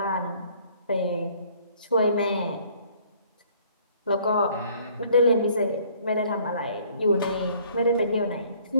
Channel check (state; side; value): inverted; both; correlation -0.58